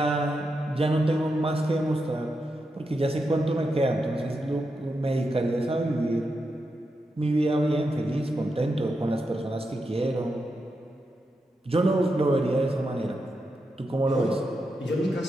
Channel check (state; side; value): normal; both; correlation 0.86